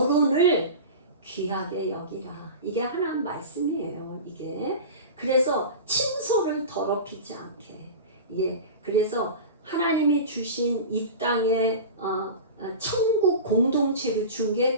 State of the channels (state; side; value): inverted; both; correlation -0.31